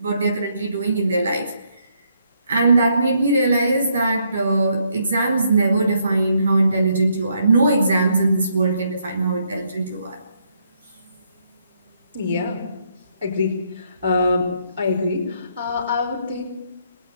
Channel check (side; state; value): both; inverted; correlation -0.73